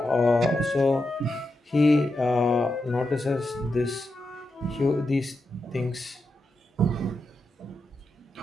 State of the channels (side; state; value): both; normal; correlation 0.88